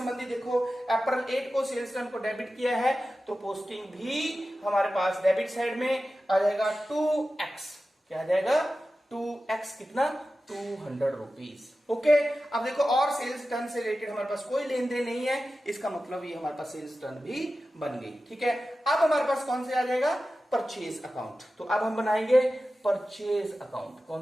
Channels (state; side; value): normal; both; correlation 0.94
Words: देखो अप्रैल 8 को सेल्स रिटर्न को डेबिट किया है, तो पोस्टिंग भी हमारे पास डेबिट साइड में आ जाएगा 2x। क्या आ जाएगा, 2x, कितना, 200 रुपीज। ओके, अब देखो और सेल्स रिटर्न से रिलेटेड हमारे पास कोई लेन देन नहीं है, इसका मतलब ये हमारे पास सेल्स रिटर्न भी बन गई। ठीक है, अब हमारे पास कौन से आ जाएगा, परचेज अकाउंट। तो अब हम बनाएंगे परचेज अकाउंट।